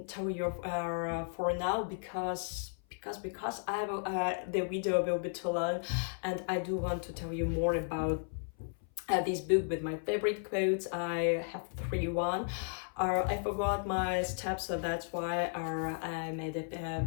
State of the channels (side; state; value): right; silent; 55 dB below the other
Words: tell you for now, because I will, the video will be too long, and I do want to tell you more about this book with my favorite quotes. I have one. I forgot my steps, so that's why I made